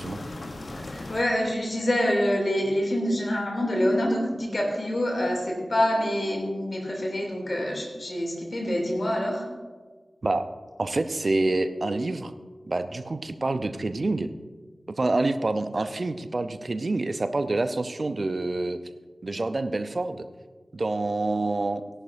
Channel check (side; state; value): both; normal; correlation 0.96